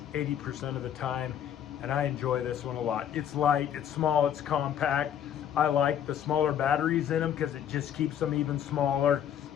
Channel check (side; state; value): right; quieter; 9.6 dB